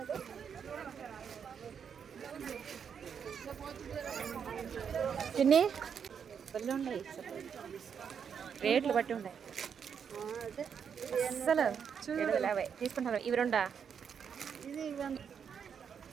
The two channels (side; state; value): left; quieter; 7.2 dB